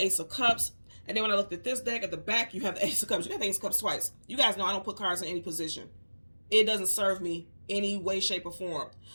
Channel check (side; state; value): both; inverted; correlation -1.00